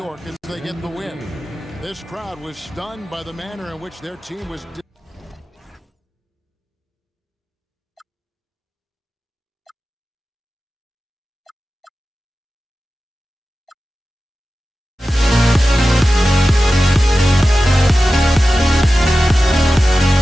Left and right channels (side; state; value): both; normal; correlation 0.94